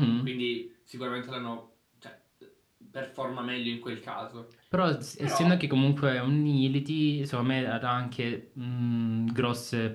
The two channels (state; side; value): identical; both; correlation 1.00